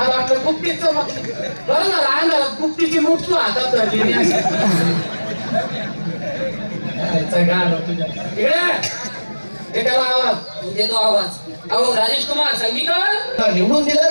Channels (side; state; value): both; inverted; correlation -1.00